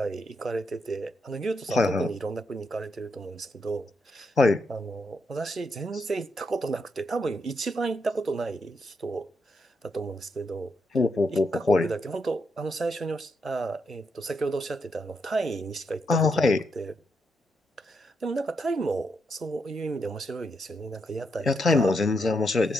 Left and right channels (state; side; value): normal; both; correlation 0.81